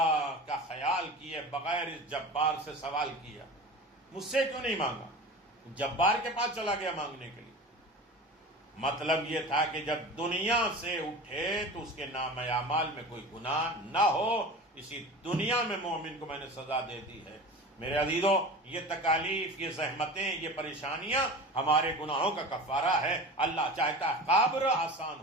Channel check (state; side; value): normal; both; correlation 0.34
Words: کا خیال کیے بغیر اس جبار سے سوال کیا، مجھ سے کیوں نہیں مانگا، جبار کے پاس چلا گیا مانگنے کے لیے۔ مطلب یہ تھا کہ جب دنیا سے اٹھے تو اس کے نام اعمال میں کوئی گناہ نہ ہو، اسی دنیا میں مومن کو میں نے سزا دے دی ہے۔ میرے عزیزو، یہ تکالیف، یہ زحمتیں، یہ پریشانیاں ہمارے گناہوں کا کفارہ ہے۔ اللہ چاہتا ہے قبر آسان